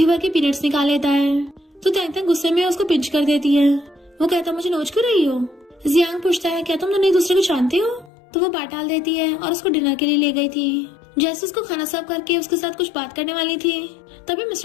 भर के पीनट्स निकाल लेता है। तो तैंग तैंग गुस्से में उसको पिंच कर देती है। वो कहता मुझे नोच क्यों रही हो। जियांग पूछता है क्या तुम दोनों एक दूसरे को जानते हो। तो वो बात टाल देती है और उसको डिनर के लिए ले गई थी। जैसे उसको खाना सर्व करके उसके साथ कुछ बात करने वाली थी, तभी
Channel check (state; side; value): drops out; right; at 8.1 s